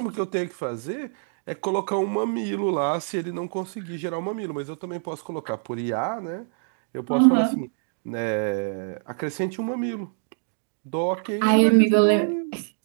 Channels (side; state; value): left; silent; digital silence